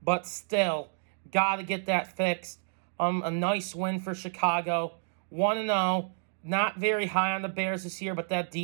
but still, got to get that fixed. A nice win for Chicago. 1-0. Not very high on the Bears this year, but that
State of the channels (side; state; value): left; silent; digital silence